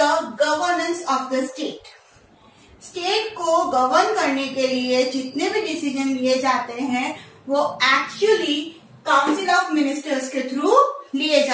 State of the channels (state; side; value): identical; both; correlation 1.00